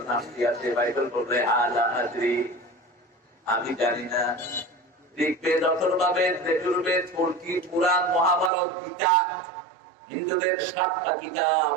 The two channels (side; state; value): left; drops out; at 8.5 s